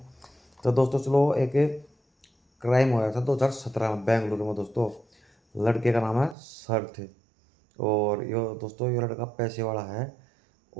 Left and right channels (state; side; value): drops out; left; at 6.4 s